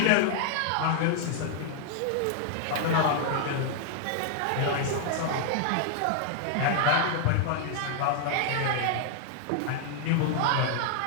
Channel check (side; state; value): both; different; correlation 0.00